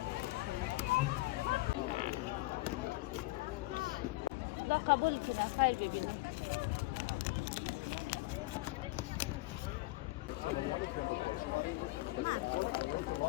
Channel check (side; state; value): right; quieter; 21.4 dB